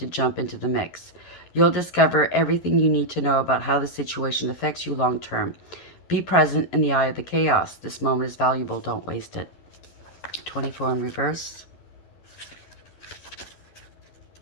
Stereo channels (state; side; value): late; right; 11 ms